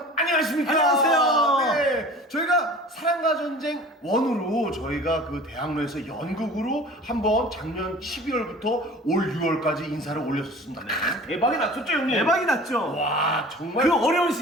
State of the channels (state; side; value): normal; both; correlation 0.43